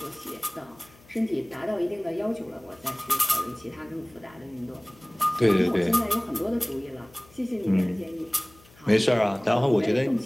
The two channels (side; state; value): left; noise; hum, 27 dB below the sound